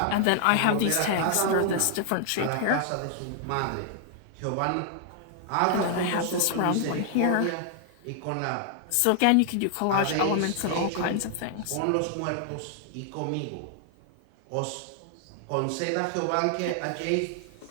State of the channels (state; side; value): different; both; correlation 0.00